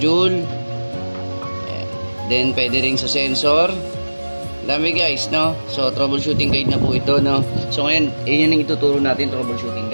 Then, pwede rin sa sensor. Dami guys, no? So, troubleshooting guide na po ito, no? So, ngayon, yun yung ituturo natin, troubleshooting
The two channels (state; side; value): inverted; both; correlation -1.00